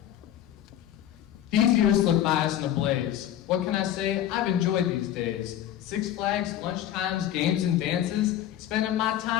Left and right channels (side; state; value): right; quieter; 11.6 dB